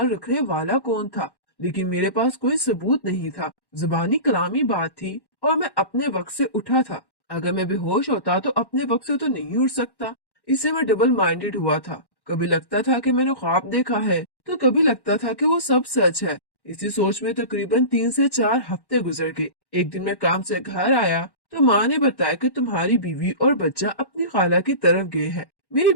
रखने वाला कौन था? लेकिन मेरे पास कोई सबूत नहीं था। जुबानी कलामी बात थी और मैं अपने वक्त से उठा था। अगर मैं बेहोश होता तो अपने वक्त से तो नहीं उठ सकता। इससे मैं डबल माइंडेड हुआ था। कभी लगता था कि मैंने ख्वाब देखा है तो कभी लगता था कि वो सब सच है। इसी सोच में तकरीबन 3 से 4 हफ्ते गुजर गए। एक दिन मैं काम से घर आया तो माँ ने बताया कि तुम्हारी बीवी और बच्चा अपनी खाला की तरफ गए हैं। मेरी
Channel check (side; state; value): right; late; 1.1 ms